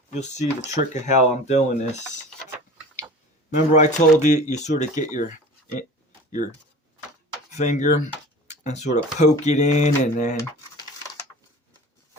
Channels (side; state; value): both; normal; correlation 0.39